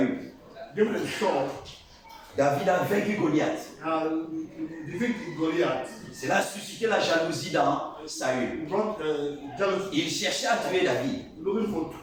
Given a sword. David a vaincu Goliath. Defeat Goliath. Cela a suscité la jalousie dans Saül. He brought jealousy. Il cherchait à tuer David. Looking for to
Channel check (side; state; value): both; identical; correlation 1.00